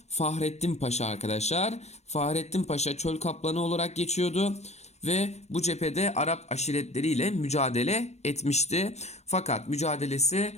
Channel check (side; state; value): right; late; 0.32 ms